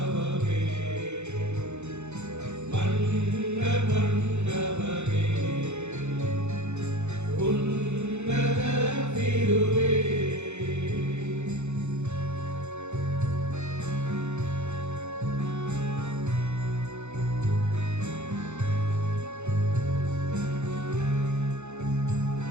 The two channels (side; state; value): left; late; 0.82 ms